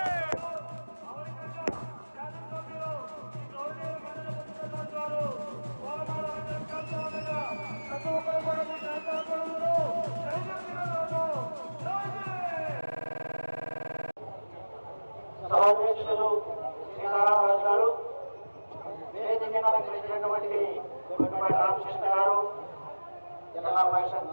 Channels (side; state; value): both; inverted; correlation -1.00